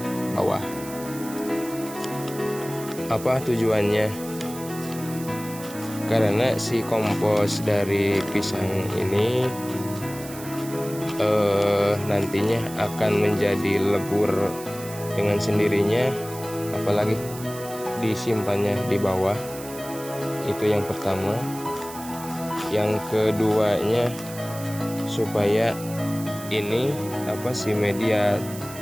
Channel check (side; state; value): right; noise; hiss, 14 dB below the sound